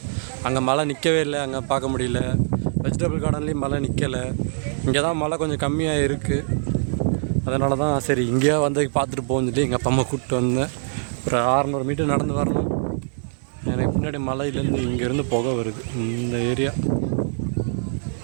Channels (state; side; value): silent; left; digital silence